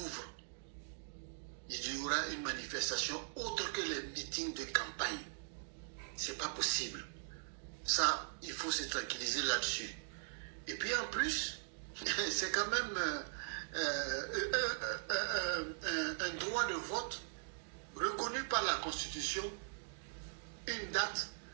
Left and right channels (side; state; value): left; silent; digital silence